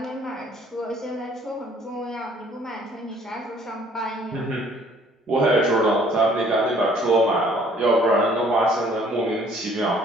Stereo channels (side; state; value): both; normal; correlation 0.58